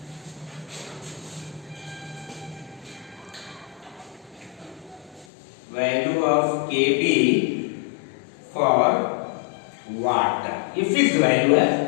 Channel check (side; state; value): right; drops out; at 5.2 s